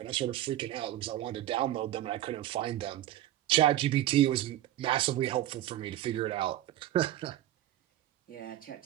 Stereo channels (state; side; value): quieter; left; 13.5 dB